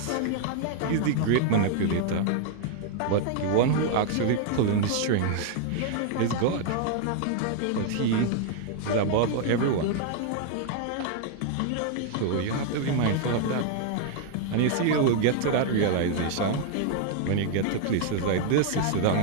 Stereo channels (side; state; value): both; different; correlation 0.00